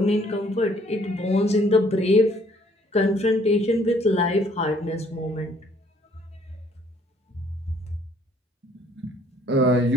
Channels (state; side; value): normal; both; correlation 0.62